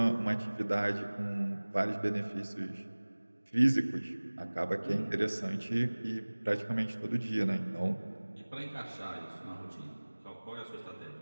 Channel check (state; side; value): inverted; both; correlation -1.00